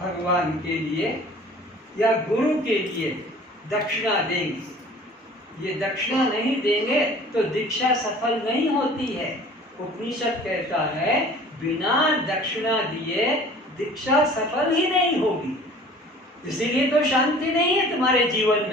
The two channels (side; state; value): both; normal; correlation 0.47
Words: भगवान के लिए या गुरु के लिए दक्षिणा देंगे। ये दक्षिणा नहीं देंगे तो दीक्षा सफल नहीं होती है। उपनिषद कहता है बिना दक्षिणा दिए दीक्षा सफल ही नहीं होगी। इसीलिए तो शांति नहीं है तुम्हारे जीवन